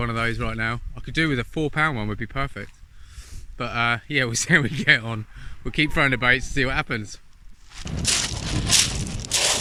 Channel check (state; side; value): identical; both; correlation 1.00